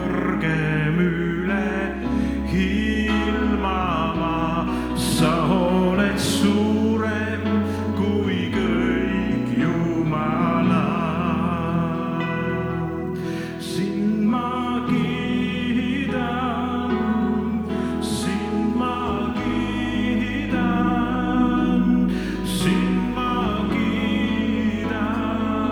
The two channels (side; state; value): both; identical; correlation 1.00